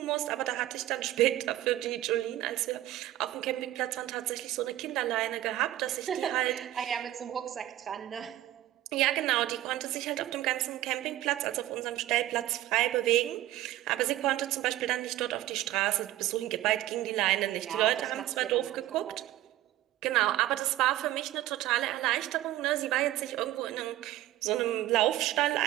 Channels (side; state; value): left; quieter; 14.7 dB